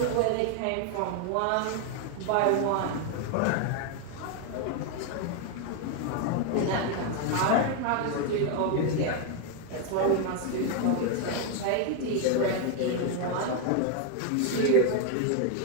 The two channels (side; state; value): both; different; correlation 0.00